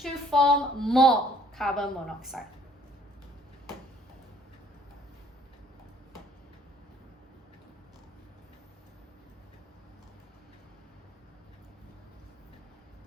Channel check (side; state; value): both; normal; correlation 0.60